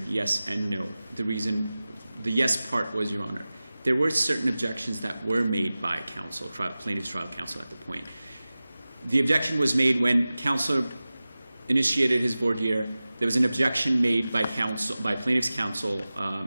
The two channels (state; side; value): inverted; both; correlation -0.97